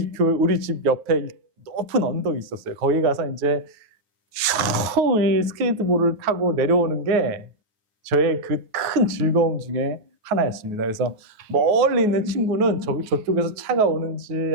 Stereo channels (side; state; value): left; late; 9.4 ms